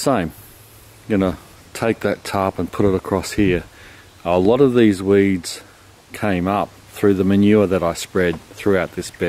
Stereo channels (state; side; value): identical; both; correlation 1.00